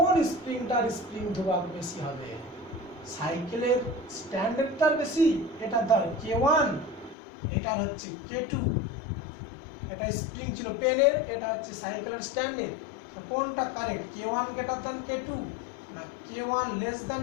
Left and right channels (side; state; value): right; drops out; at 7.2 s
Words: স্প্রিংটার স্প্রিং ধ্রুবক বেশি হবে। সাইকেলের স্ট্যান্ডার্ডটার বেশি, এটা ধর K1, এটার হচ্ছে K2। এটা স্প্রিং ছিল পেনের, এটা হচ্ছে সাইকেলের স্ট্যান্ডের। কোনটা correct, K1 greater than K2, না K1 লেস